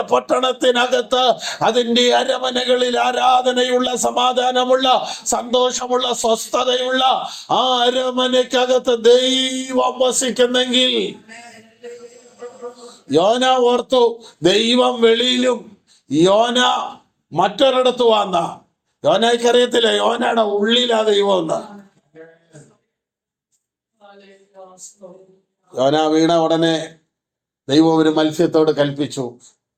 പട്ടണത്തിനകത്ത് അതിന്റെ അരമനകളിൽ ആരാധനയുള്ള, സമാധാനമുള്ള, സന്തോഷമുള്ള, സ്വസ്ഥതയുള്ള ആ അരമനയ്ക്കകത്ത് ദൈവം വസിക്കുന്നെങ്കിൽ യോന ഓർത്തു, ദൈവം വെളിയിലും യോന മറ്റൊരിടത്ത് വന്ന. യോനയ്ക്ക് അറിയത്തില്ല യോനയുടെ ഉള്ളിലാ ദൈവം എന്ന്. യോന വീണ ഉടനെ ദൈവം ഒരു മത്സ്യത്തോട് കൽപ്പിച്ചു,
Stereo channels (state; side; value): identical; both; correlation 1.00